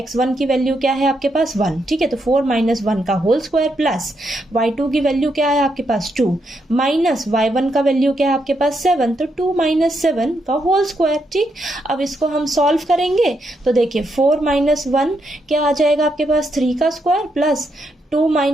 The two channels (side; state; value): both; normal; correlation 0.80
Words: की वैल्यू क्या है आपके पास 1। ठीक है, तो 4 माइनस 1 का होल स्क्वायर प्लस y2 की वैल्यू क्या है आपके पास 2 माइनस y1 का वैल्यू क्या है आपके पास 7, तो 2 माइनस 7 का होल स्क्वायर। ठीक, अब इसको हम सॉल्व करेंगे तो देखिए 4 माइनस 1 क्या आ जाएगा आपके पास 3 का स्क्वायर प्लस 2